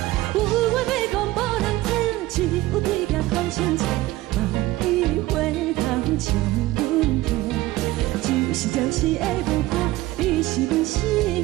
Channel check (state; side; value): quieter; left; 17.8 dB